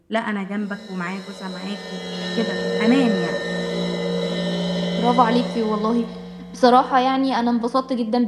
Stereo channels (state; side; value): identical; both; correlation 1.00